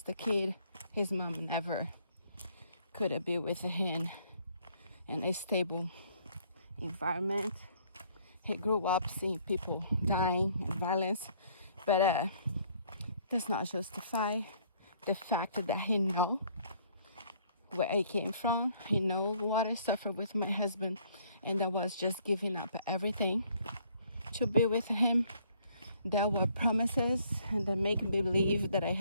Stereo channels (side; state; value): both; inverted; correlation -0.63